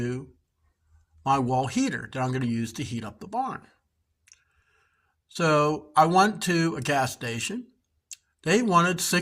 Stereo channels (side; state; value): both; identical; correlation 1.00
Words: my wall heater that I'm going to use to heat up the barn. So I went to a gas station. They wanted